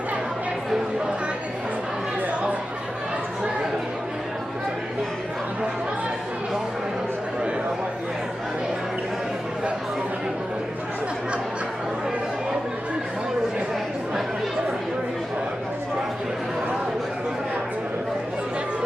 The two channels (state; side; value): normal; both; correlation 0.92